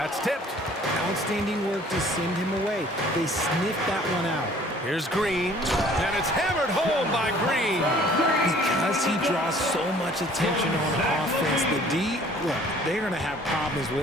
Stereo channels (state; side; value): normal; both; correlation 0.54